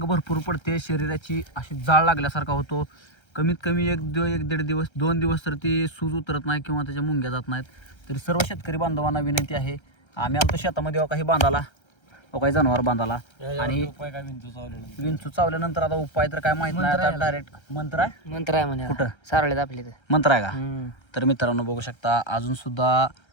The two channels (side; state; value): right; late; 1.3 ms